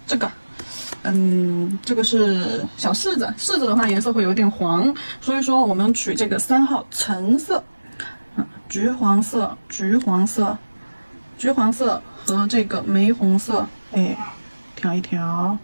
这个。这个是小柿子，柿子的话颜色会有点黄，所以说我们取这个3号橙色，橘黄色和这个玫红色，哎，调一调，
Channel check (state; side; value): inverted; both; correlation -1.00